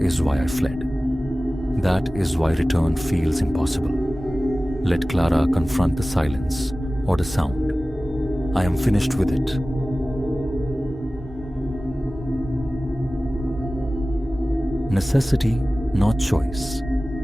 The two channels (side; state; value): both; normal; correlation 0.97